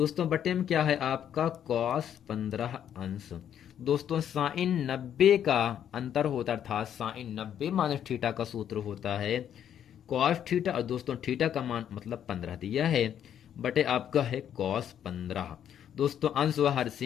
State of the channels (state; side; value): quieter; right; 9.7 dB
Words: बटे में क्या है आपका cos 15 अंश। दोस्तों साइन 90 का अंतर होता है, अर्थात साइन 90 माइनस थीटा का सूत्र होता है cos थीटा, और दोस्तों थीटा का मान मतलब 15 दिया है, बटे आपका है cos 15। दोस्तों अंश व हर